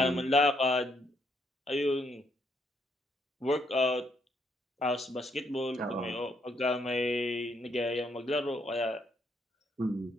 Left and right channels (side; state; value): both; normal; correlation 0.73